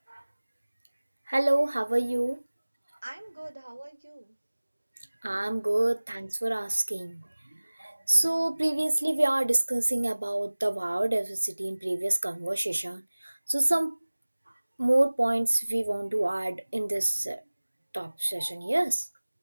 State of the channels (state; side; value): inverted; both; correlation -1.00